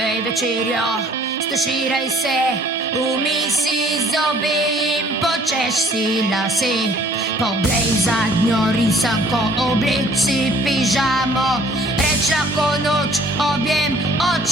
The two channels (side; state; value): both; normal; correlation 0.57